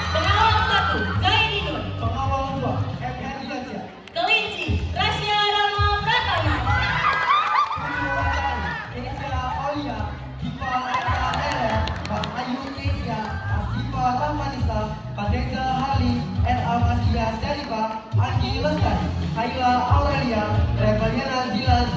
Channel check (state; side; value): identical; both; correlation 1.00